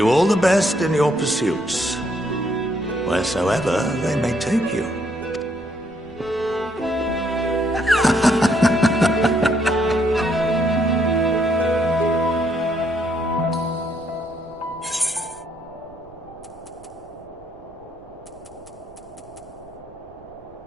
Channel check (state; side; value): noise; right; rumble, 24 dB below the sound